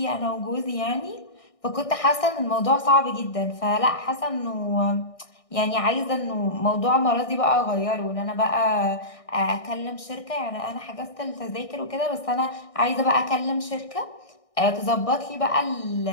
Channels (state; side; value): late; right; 1.6 ms